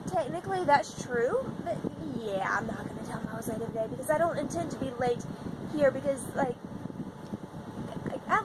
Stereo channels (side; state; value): both; identical; correlation 1.00